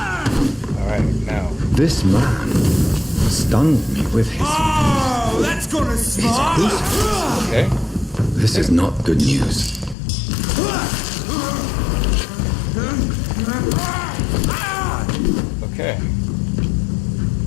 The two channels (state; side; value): drops out; right; at 10.0 s